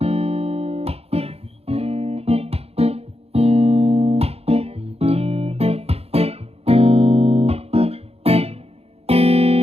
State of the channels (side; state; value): left; late; 0.29 ms